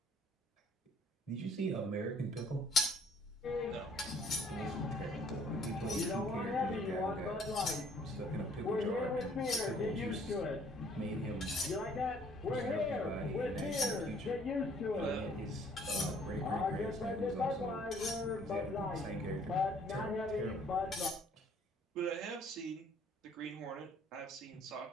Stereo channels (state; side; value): normal; both; correlation 0.60